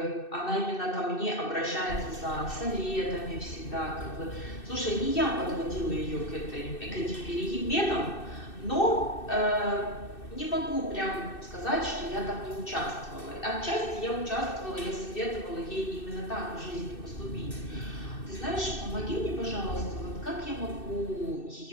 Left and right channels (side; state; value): right; late; 2.6 ms